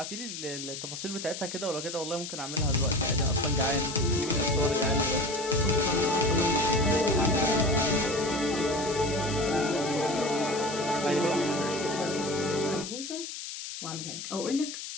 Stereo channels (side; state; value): left; noise; hiss, 8 dB below the sound